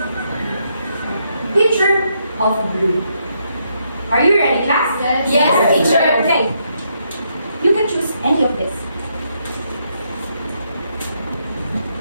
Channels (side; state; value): both; inverted; correlation -0.76